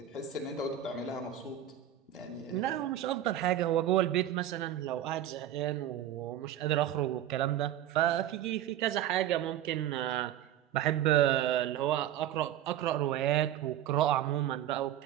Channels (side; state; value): left; quieter; 11.5 dB